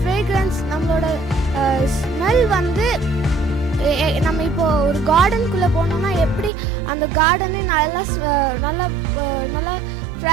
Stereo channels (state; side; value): drops out; left; at 6.5 s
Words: நம்மளோட smell வந்து நம்ம இப்போது ஒரு கார்டனுக்குள்ளே போனோம்னா எப்படி அந்த கார்டனே நல்லா